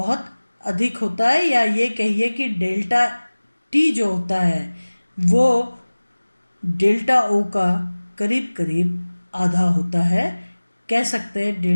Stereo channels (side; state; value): both; inverted; correlation -1.00